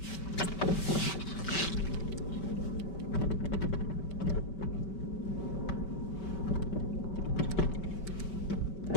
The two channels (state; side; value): late; right; 5.2 ms